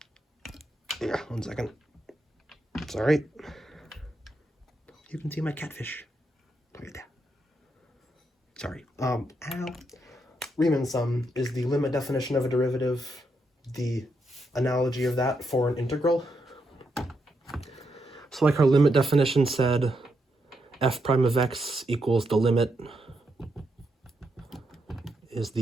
Yeah, 1 second. It's all right. You can see my catfish. Look at that. Sorry. Ow. Riemann sum is the limit definition of a derivative, the analogy of that for an integral. So like our limit definition said, f prime of x equals the limit is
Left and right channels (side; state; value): both; normal; correlation 0.81